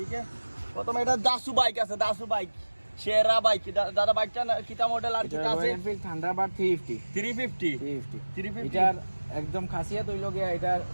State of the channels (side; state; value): both; inverted; correlation -1.00